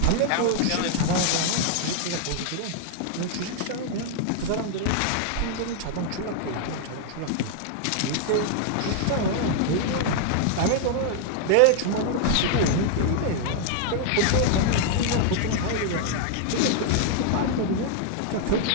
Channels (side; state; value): both; different; correlation 0.00